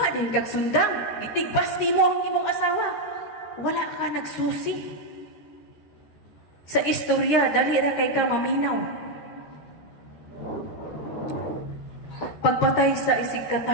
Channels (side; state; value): right; late; 13 ms